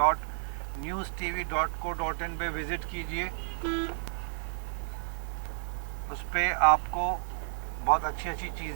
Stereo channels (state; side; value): silent; left; digital silence